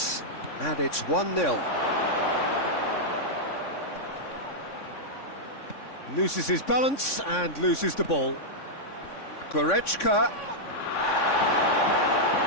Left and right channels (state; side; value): late; right; 3.6 ms